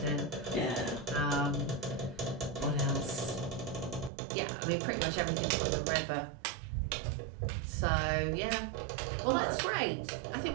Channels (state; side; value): drops out; left; at 4.1 s